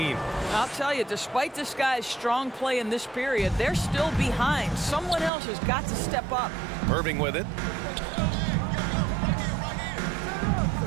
I'll tell you, despite this guy's strong play in this period, they're still behind. Someone else has got to step up. Irving with it.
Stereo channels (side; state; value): left; drops out; at 5.3 s